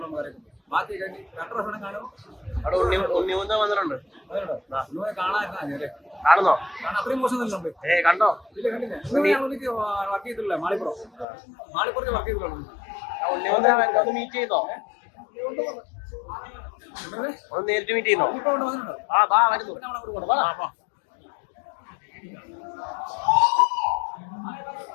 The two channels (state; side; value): drops out; right; at 11.2 s